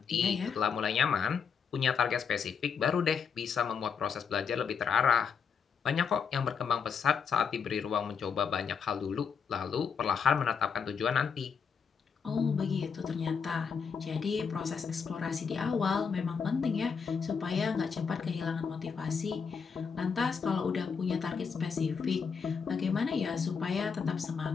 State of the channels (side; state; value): right; quieter; 6.3 dB